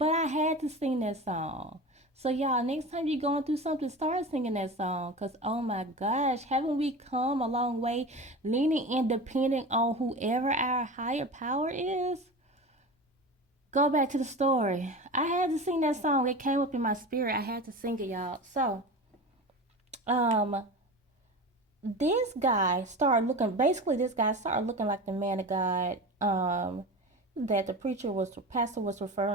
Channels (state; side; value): normal; both; correlation 0.30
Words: I had to sing that song. So y'all, next time you're going through something, start singing that song. Cause oh my gosh, haven't we come a long way, leaning and depending on whoever our higher power is? Go back to the story. I had to sing that song. It came up in my spirit. I had to sing it, y'all. So, um, this guy started looking. Basically, this guy started looking like the man of God. That the pastor was